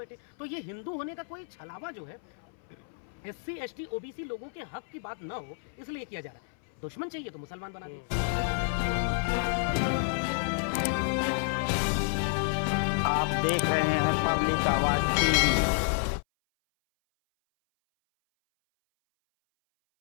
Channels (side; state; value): right; silent; 58 dB below the other